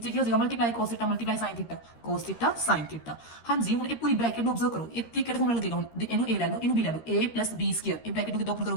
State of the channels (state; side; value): late; right; 13 ms